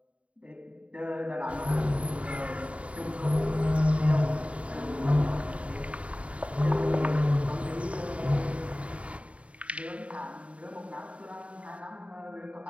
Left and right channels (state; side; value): late; left; 0.063 ms